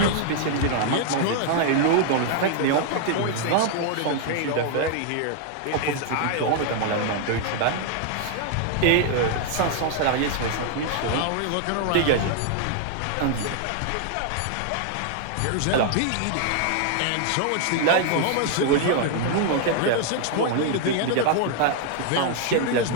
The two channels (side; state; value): both; different; correlation 0.00